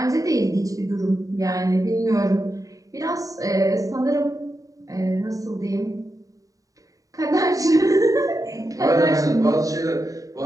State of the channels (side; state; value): left; late; 0.16 ms